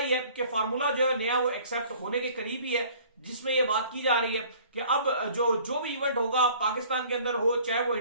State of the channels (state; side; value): inverted; both; correlation -0.52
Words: है कि फार्मूला जो है नया वो एक्सेप्ट होने के करीब ही है, जिसमें ये बात की जा रही है कि अब जो भी इवेंट होगा पाकिस्तान के अंदर हो चाहे वो